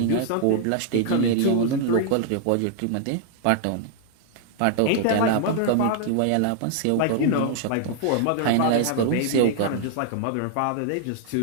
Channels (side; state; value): both; different; correlation -0.01